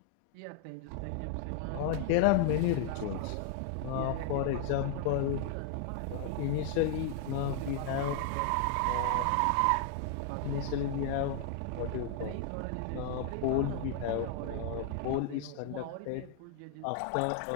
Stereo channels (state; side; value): different; both; correlation 0.00